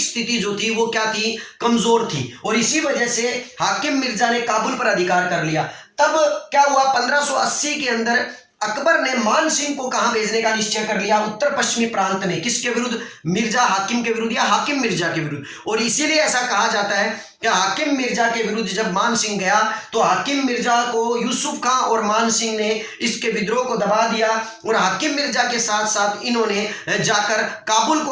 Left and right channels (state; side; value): identical; both; correlation 1.00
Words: स्थिति जो थी वो क्या थी? कमजोर थी। और इसी वजह से हाकिम मिर्जा ने काबुल पर अधिकार कर लिया। तब क्या हुआ? 1580 के अंदर अकबर ने मान सिंह को कहां भेजने का निश्चय कर लिया? उत्तर पश्चिमी प्रांत में। किसके विरुद्ध? मिर्जा हाकिम के विरुद्ध या हाकिम मिर्जा के विरुद्ध। और इसीलिए ऐसा कहा जाता है कि हाकिम मिर्जा के विरुद्ध जब मान सिंह गया तो हाकिम मिर्जा को यूसुफ खां और मान सिंह ने इसके विद्रोह को दबा दिया। और हाकिम मिर्जा के साथ साथ इन्होंने जाकर काबुल को